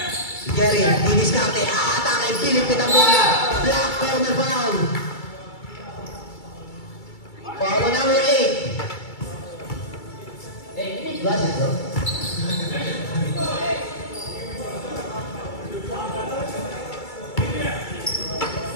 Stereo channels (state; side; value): late; right; 2.3 ms